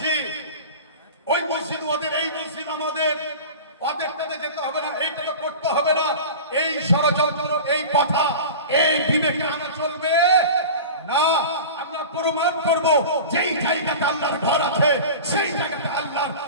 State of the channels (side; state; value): both; inverted; correlation -0.34